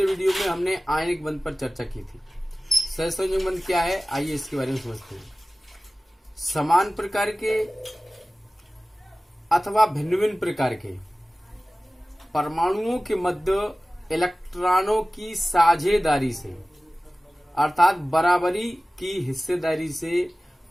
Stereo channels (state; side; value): normal; both; correlation 0.97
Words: वीडियो में हमने आयनिक बंध पर चर्चा की थी। सह संयोजक बंध क्या है, आइए इसके बारे में समझते हैं। समान प्रकार के अथवा भिन्न भिन्न प्रकार के परमाणुओं के मध्य इलेक्ट्रॉनों की साझेदारी से अर्थात बराबरी की हिस्सेदारी से